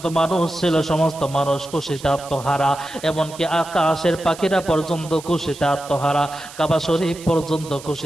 মানুষ ছিল সমস্ত মানুষ খুশিতে আত্মহারা, এমনকি আকাশের পাখিরা পর্যন্ত খুশিতে আত্মহারা, কাবা শরীফ পর্যন্ত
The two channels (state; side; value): noise; right; hiss, 17 dB below the sound